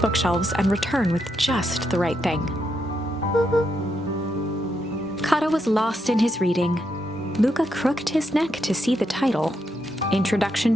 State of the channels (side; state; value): both; normal; correlation 0.81